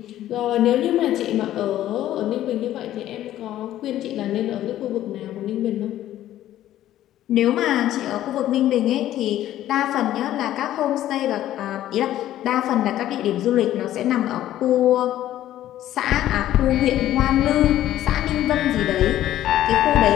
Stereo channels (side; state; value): right; quieter; 13.0 dB